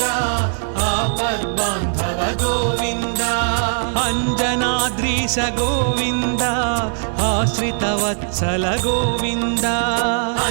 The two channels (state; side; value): silent; left; 58 dB below the other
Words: आपद्बांधव गोविंद अंजनाद्रीश गोविंद आश्रित वत्सल गोविंद